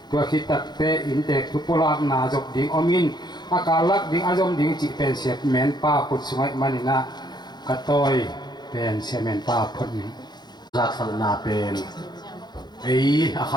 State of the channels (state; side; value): late; right; 0.21 ms